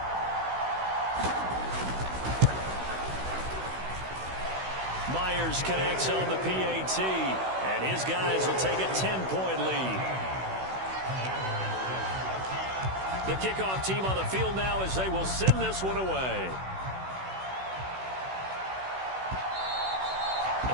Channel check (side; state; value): left; late; 16 ms